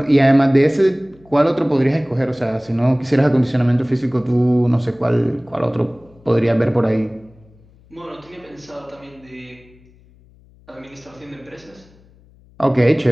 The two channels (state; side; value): noise; left; hum, 28 dB below the sound